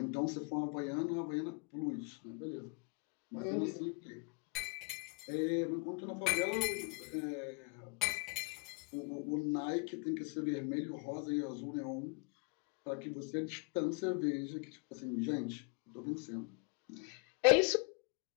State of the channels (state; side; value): quieter; right; 32.6 dB